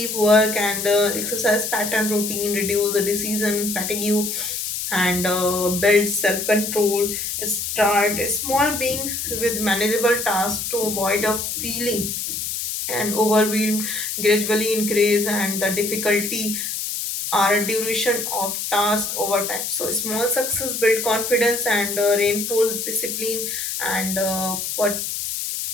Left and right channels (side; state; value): left; noise; hiss, 3 dB below the sound